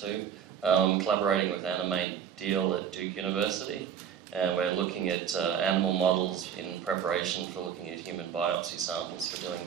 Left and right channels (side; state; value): left; quieter; 8.4 dB